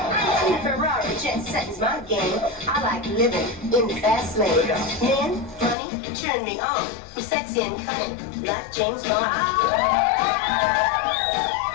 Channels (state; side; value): drops out; right; at 5.8 s